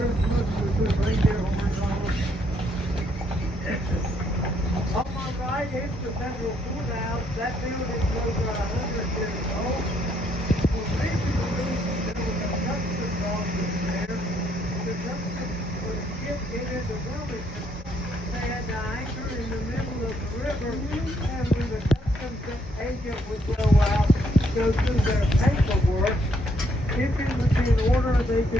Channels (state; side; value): normal; both; correlation 0.71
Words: with reindeer horns on them. On my right is the Federal Courthouse. That building's over 100 years old. Originally, there was a customs office there. The customs was shipped into Wilmington. They had to anchor in the middle of the river, and when the customs agent would go out, go through their paperwork, if it was in order, they